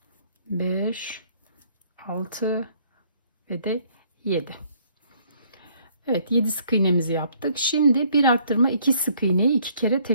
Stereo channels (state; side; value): inverted; both; correlation -0.64